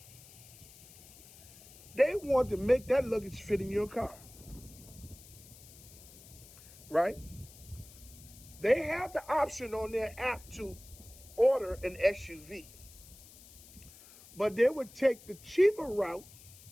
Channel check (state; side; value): noise; left; hiss, 20 dB below the sound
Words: They want to make that luggage fit in your car, right? They have the option on their app to order an SUV, but they would take the cheaper route